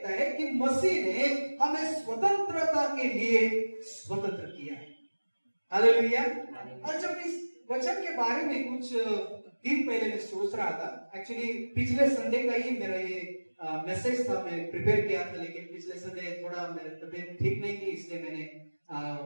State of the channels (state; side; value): inverted; both; correlation -1.00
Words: है कि मसीह ने हमें स्वतंत्रता के लिए स्वतंत्र किया है। हालेलुया। और जब इस वचन के बारे में कुछ दिन पहले मैं सोच रहा था, एक्चुअली पिछले संडे का ही मेरा ये मैसेज था, मैं प्रिपेयर किया था, लेकिन पिछले संडे थोड़ा मेरी तबीयत ठीक नहीं थी, इसलिए मैंने